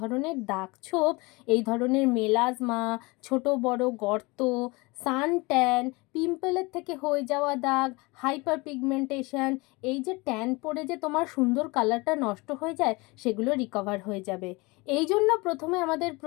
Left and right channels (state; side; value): quieter; right; 25.2 dB